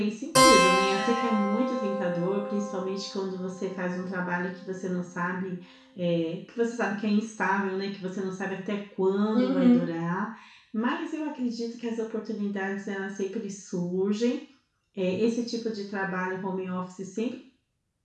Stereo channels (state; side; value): identical; both; correlation 1.00